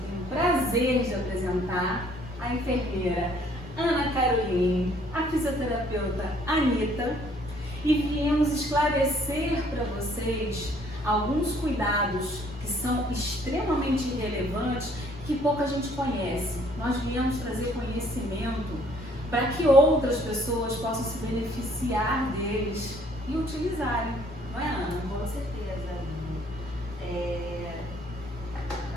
tenho o prazer de apresentar, a enfermeira Ana Caroline, a fisioterapeuta Anitta, e viemos esclarecer para vocês alguns cuidados que são extremamente relevantes que pouca gente conhece. Nós viemos trazer conhecimento para que outras pessoas possam se beneficiar deles e utilizarem, não é, Ana? Com certeza.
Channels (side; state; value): both; normal; correlation 0.61